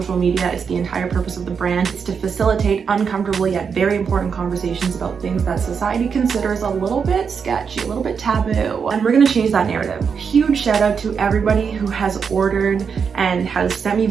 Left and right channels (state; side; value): quieter; left; 6.3 dB